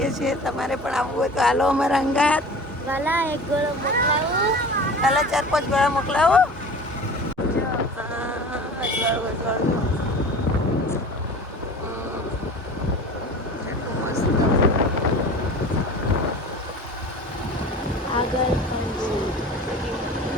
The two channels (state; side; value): normal; both; correlation 0.39